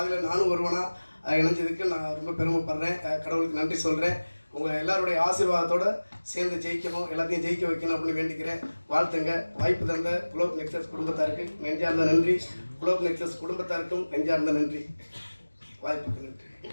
நானும் ஒருவனாக இணைஞ்சதுக்கு நான் ரொம்ப பெருமைப்படுறேன். கடவுளுக்கு நன்றி சொல்கிறேன். உங்கள் எல்லாருடைய ஆசீர்வாதத்தோடு சேர்ந்து ஜெயிக்கணும், எல்லாத்தையும் ஜெயிக்க வைக்கணும் அப்படின்னு வேண்டிக்கிறேன். வாழ்த்துங்க. வாய்ப்பு தந்த குளோப் நெக்ஸஸ் குடும்பத்தாருக்கு நெஞ்சார்ந்த நன்றி. குளோப் நெக்ஸஸ் குடும்பத்தாருக்கும் நெஞ்சார்ந்த நன்றி. வாய்ப்புக்கு நன்றி.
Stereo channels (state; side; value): inverted; both; correlation -1.00